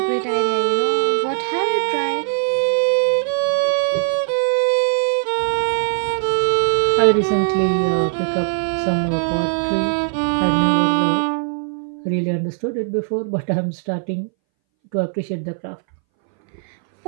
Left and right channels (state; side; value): silent; left; 63 dB below the other